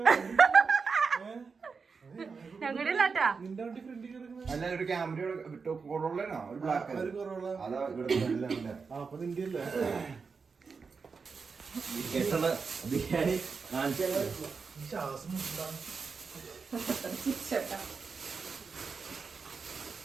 ഞങ്ങളുടെ ഇല്ലാട്ടാ. നിന്റെ വണ്ടി ഫ്രണ്ടിൽ കിടക്കുന്ന അല്ല ഒരു ക്യാമറ കൊറോളാണോ ഒരു ബ്ലാക്ക് അതാ ഇവിടെ അപ്പൊ നിന്റെ അല്ലേ ബിരിയാണി കാണിച്ചു ശ്വാസം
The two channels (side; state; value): left; quieter; 5.1 dB